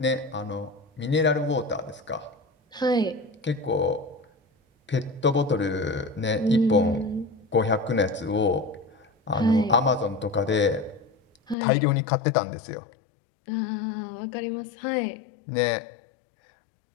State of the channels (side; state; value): right; drops out; at 11.6 s